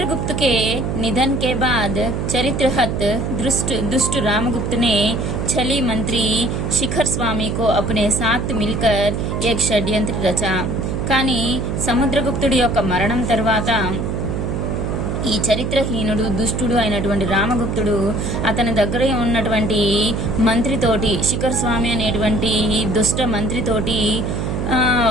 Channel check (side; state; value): right; noise; hum, 2 dB below the sound